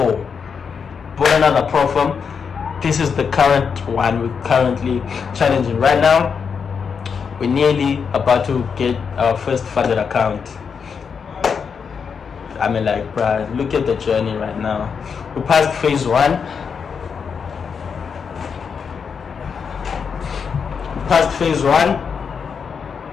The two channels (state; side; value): quieter; right; 6.2 dB